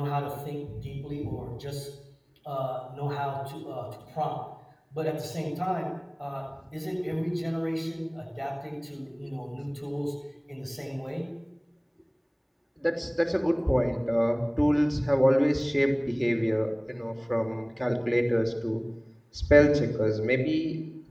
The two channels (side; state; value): both; identical; correlation 1.00